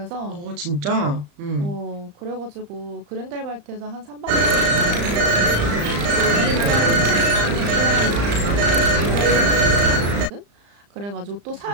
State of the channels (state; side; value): late; left; 35 ms